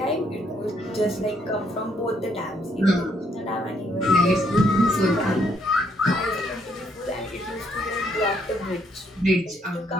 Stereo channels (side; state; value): both; normal; correlation 0.71